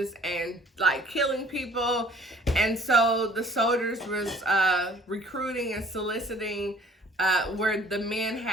and like killing people. And so the soldiers was recruiting and soliciting where the men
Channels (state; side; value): normal; both; correlation 0.54